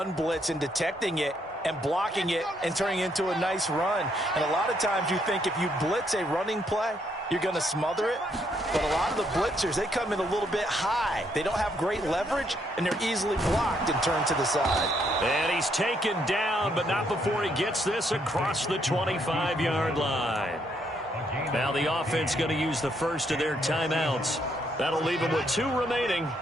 blitz and detecting it and blocking it and turning it into a nice run. And a lot of times you think if you blitz a running play, you're going to smother it. But a lot of the blitzers, they come in a little bit high. They don't have great leverage, and they're easily blocked and turned to the side. And he's taken down, but not before he gets this across the 25-yard line. Now the offense going to use the first of their timeouts. That'll leave them with 2 remaining.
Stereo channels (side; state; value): both; normal; correlation 0.73